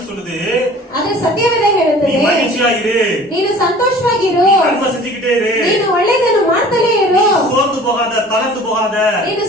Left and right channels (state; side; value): normal; both; correlation 0.46